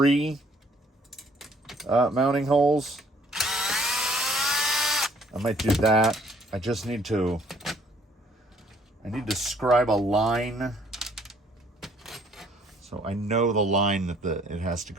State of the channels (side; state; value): both; normal; correlation 0.62